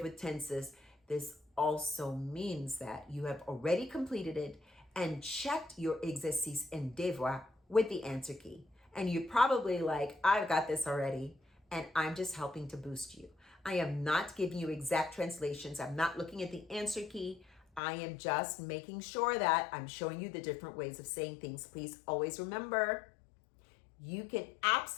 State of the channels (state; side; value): drops out; right; at 17.8 s